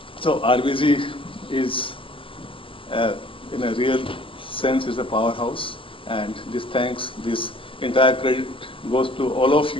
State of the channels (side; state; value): right; late; 0.25 ms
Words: So RVG is, in a real sense, is a powerhouse, and this entire credit goes to all of